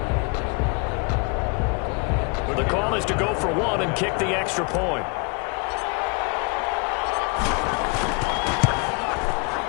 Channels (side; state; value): right; quieter; 32.6 dB